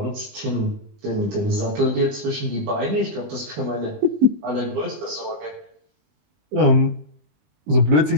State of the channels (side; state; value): left; late; 20 ms